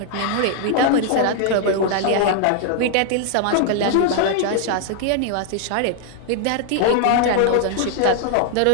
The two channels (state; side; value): different; both; correlation 0.00